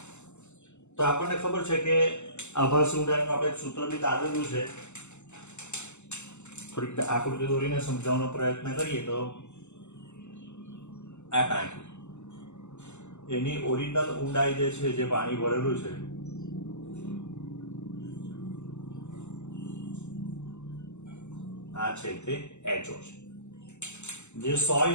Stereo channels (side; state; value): right; late; 0.83 ms